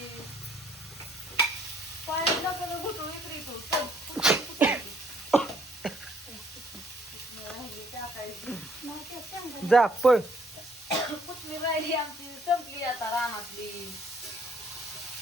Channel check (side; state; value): both; normal; correlation 0.63